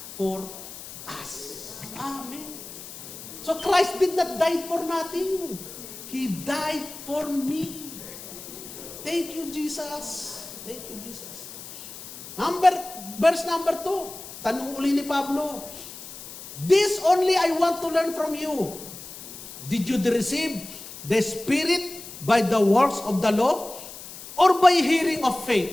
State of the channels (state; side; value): noise; left; hiss, 13 dB below the sound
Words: for us. Amen. So Christ did not die for nothing. He died for me. Thank you, Jesus. Thank you, Jesus. Verse number 2. Tanong uli ni Pablo. This only I want to learn from you. Did you receive the Spirit by the works of the law or by hearing of